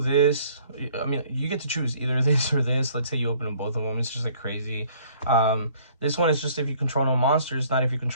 I mean, you get to choose either this or this. Let's say you open them both of them, it's just like crazy. This one is just if you control no monsters, not if you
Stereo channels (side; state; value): both; inverted; correlation -0.58